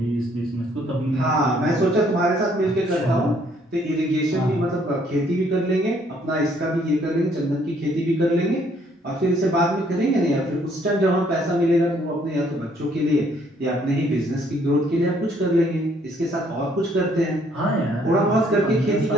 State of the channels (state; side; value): normal; both; correlation 0.65